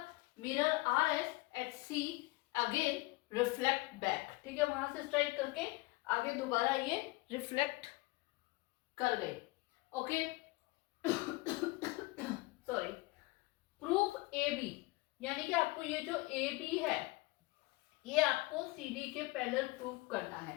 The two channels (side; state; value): right; quieter; 22.5 dB